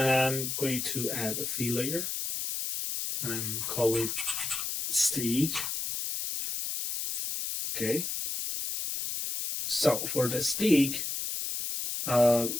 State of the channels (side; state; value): left; noise; hiss, 3 dB below the sound